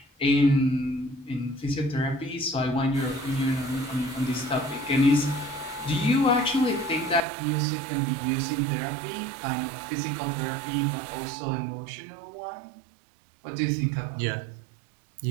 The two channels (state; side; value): drops out; left; at 7.2 s